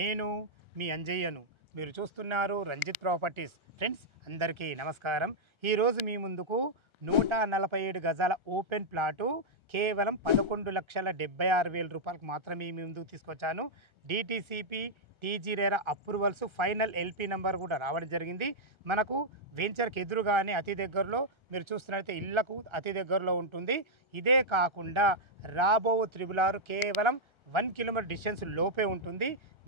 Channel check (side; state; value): left; late; 1.3 ms